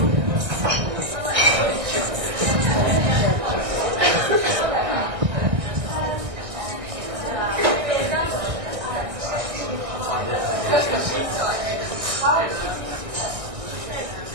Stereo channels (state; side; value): late; left; 1.6 ms